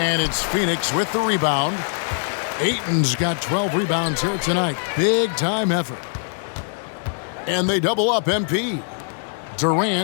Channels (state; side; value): silent; right; 64 dB below the other